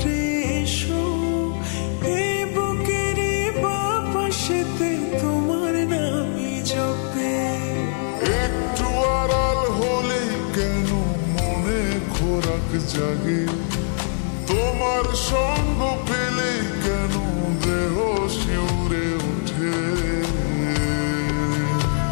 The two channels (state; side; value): silent; right; digital silence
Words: এসো, এই বুকের বাপাশেতে তোমার নামই জপে। একটু আড়াল হলে কেন মনে খোরাক জাগে, তোমার সঙ্গ পেলে কেন দেহ শিউরে ওঠে।